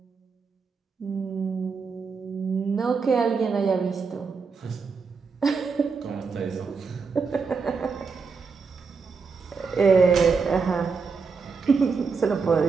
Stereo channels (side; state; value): left; quieter; 5.0 dB